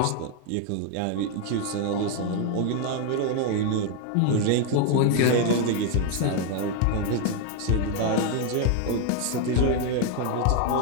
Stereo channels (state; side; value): different; both; correlation 0.01